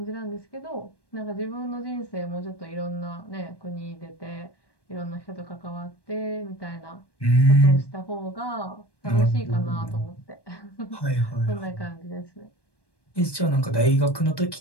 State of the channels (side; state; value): right; late; 1.1 ms